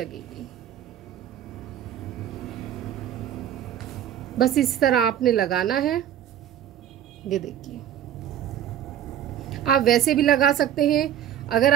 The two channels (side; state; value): left; quieter; 10.3 dB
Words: बस इस तरह आपने लगाना है। ये देखिए, आप वैसे भी लगा सकते हैं, अगर